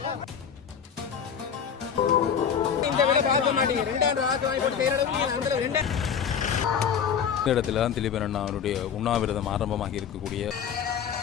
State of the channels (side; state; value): right; quieter; 7.5 dB